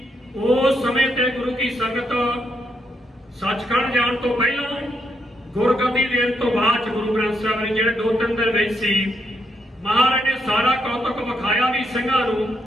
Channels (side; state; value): both; normal; correlation 0.78